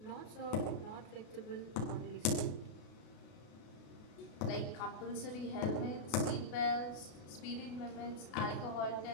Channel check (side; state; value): right; late; 33 ms